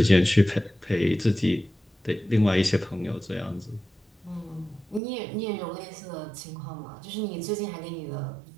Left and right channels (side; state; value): left; drops out; at 5.0 s